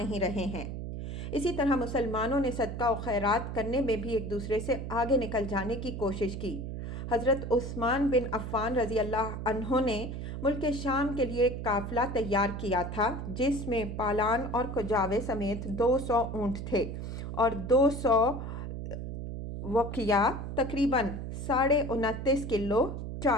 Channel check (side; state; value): right; noise; hum, 6 dB below the sound